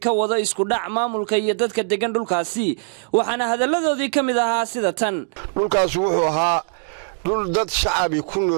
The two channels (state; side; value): silent; left; digital silence